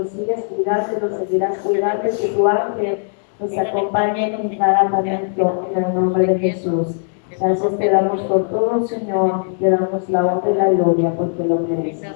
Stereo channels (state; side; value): silent; right; 67 dB below the other